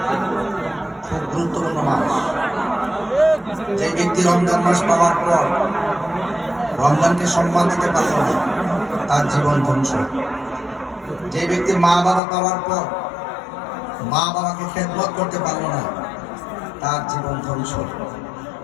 খুব গুরুত্বপূর্ণ মাস। যে ব্যক্তি রমজান মাস পাওয়ার পর রমজানকে সম্মান দিতে পারল না, তার জীবন ধ্বংস। যে ব্যক্তি মা বাবা পাওয়ার পর মা বাবাকে খেদমত করতে পারল না, তার জীবন ধ্বংস।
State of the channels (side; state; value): right; drops out; at 12.2 s